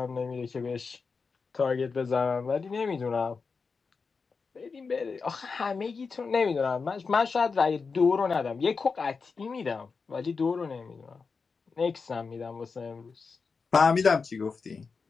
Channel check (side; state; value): right; quieter; 4.9 dB